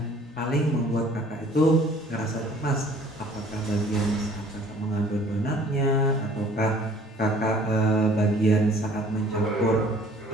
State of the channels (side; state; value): both; normal; correlation 0.54